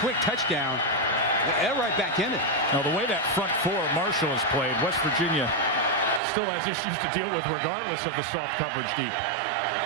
touchdown, they're right back in it. Now, the way that front 4 Marshall has played, West Virginia still has issues to deal with regardless of the soft coverage deep.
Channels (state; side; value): drops out; left; at 6.2 s